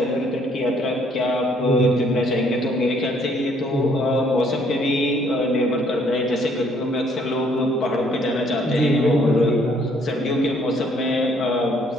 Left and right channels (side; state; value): both; normal; correlation 0.65